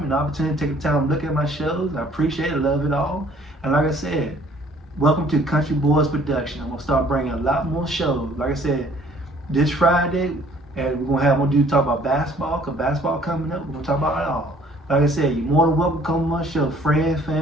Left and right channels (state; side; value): normal; both; correlation 0.57